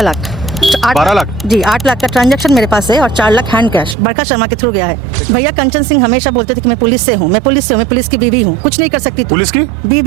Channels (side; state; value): left; drops out; at 4.0 s